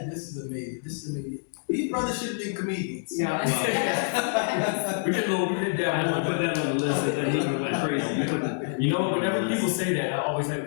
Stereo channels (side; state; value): right; silent; digital silence